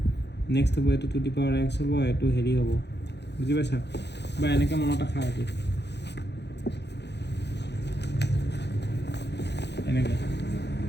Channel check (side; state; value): right; late; 0.50 ms